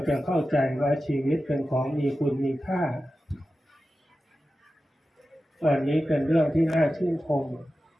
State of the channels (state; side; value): normal; both; correlation 0.93